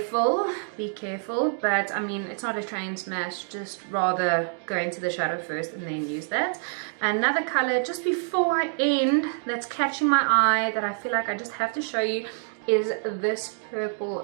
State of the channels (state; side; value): silent; left; 61 dB below the other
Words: but I mean, it's not a train smash, just rather go into the shadow first and then use that. Another color, just before I end, that's catching my eye, that I feel like I just have to show you, is this purple